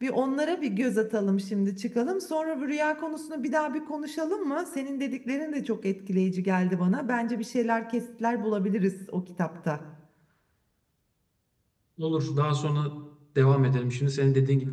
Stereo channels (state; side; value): identical; both; correlation 1.00